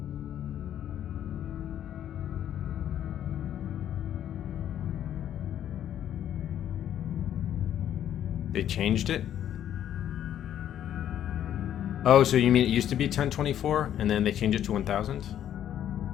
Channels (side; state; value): right; quieter; 10.7 dB